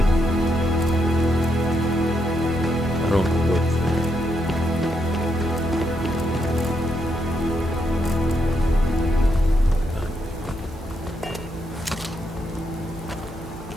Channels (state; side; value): normal; both; correlation 0.79